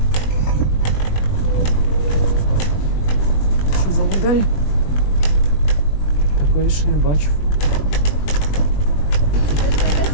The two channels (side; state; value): right; late; 20 ms